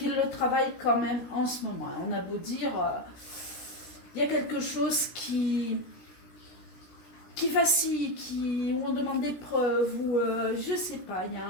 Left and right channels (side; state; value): right; late; 17 ms